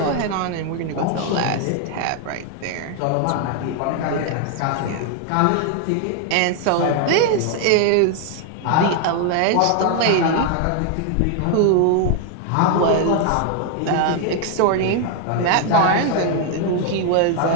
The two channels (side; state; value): both; different; correlation 0.00